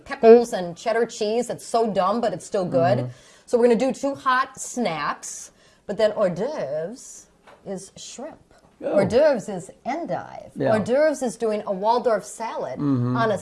pickles and cheddar cheese. It's so dumb, but it's still good. Mm-hmm. So we're going to do 2 hot snacks, but then hors d'oeuvres is shrimp. Oh. Hors d'oeuvres is endive. Yeah. Hors d'oeuvres is doing a Waldorf salad on a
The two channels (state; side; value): identical; both; correlation 1.00